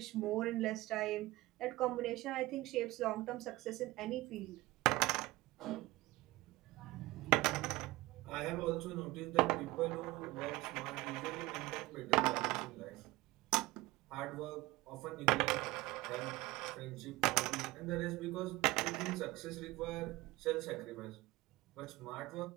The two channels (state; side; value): quieter; left; 19.8 dB